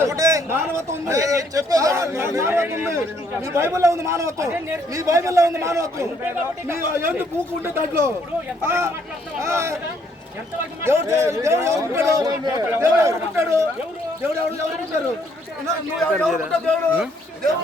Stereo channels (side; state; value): both; normal; correlation 0.68